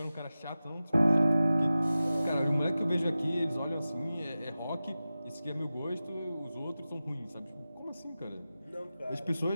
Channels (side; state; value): both; inverted; correlation -0.95